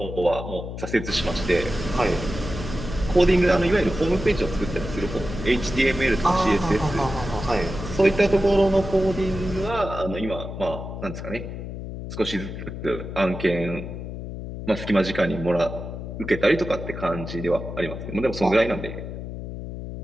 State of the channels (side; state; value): left; noise; hum, 8 dB below the sound